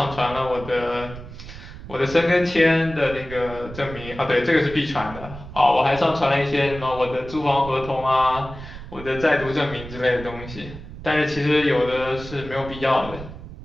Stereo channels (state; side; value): noise; right; rumble, 13 dB below the sound